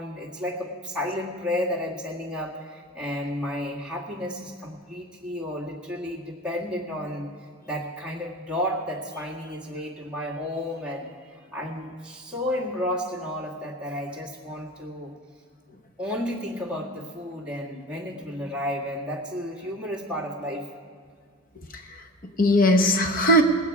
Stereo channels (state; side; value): normal; both; correlation 0.35